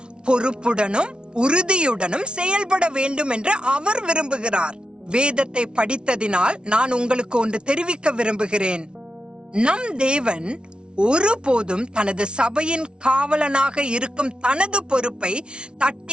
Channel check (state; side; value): late; left; 0.056 ms